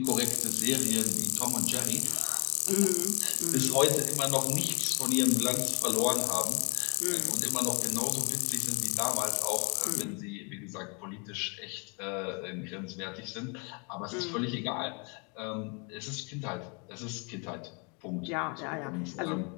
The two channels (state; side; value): quieter; right; 33.7 dB